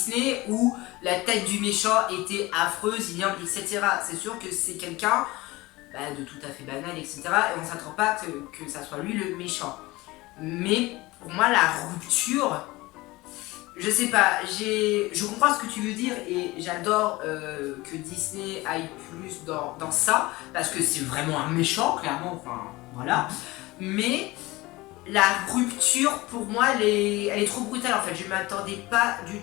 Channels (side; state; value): right; quieter; 20.6 dB